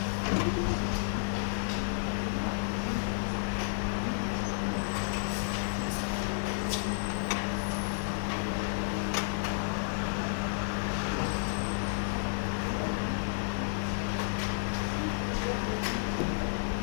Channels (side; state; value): right; silent; digital silence